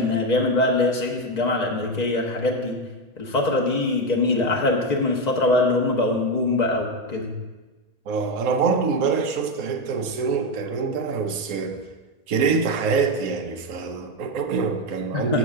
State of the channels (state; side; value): late; left; 1.8 ms